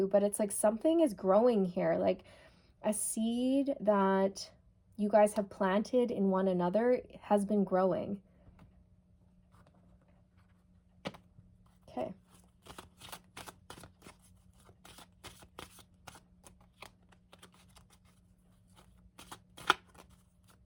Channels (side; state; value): both; identical; correlation 1.00